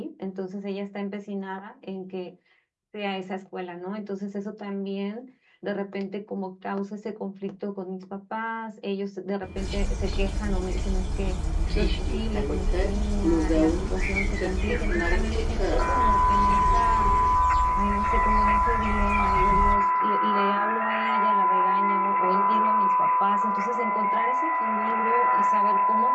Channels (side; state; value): both; identical; correlation 1.00